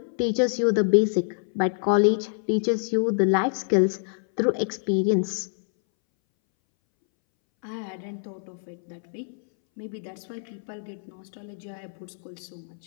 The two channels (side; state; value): right; silent; 61 dB below the other